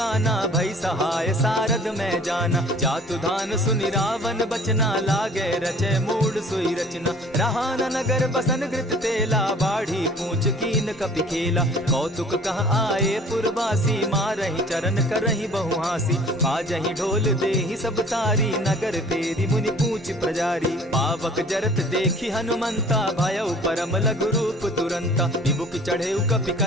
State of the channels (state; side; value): normal; both; correlation 0.50